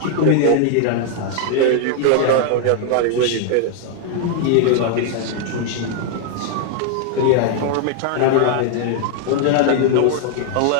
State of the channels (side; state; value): both; different; correlation 0.00